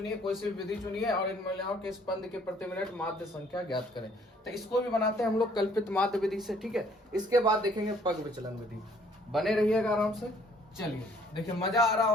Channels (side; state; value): both; normal; correlation 0.61